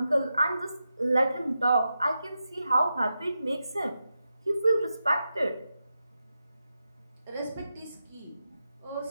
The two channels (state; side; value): inverted; both; correlation -0.89